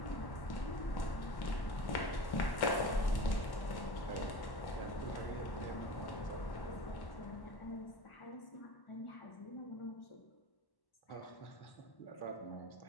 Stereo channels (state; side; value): late; right; 1.1 ms